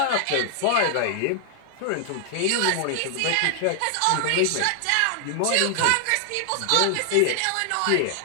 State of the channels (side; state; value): both; different; correlation 0.00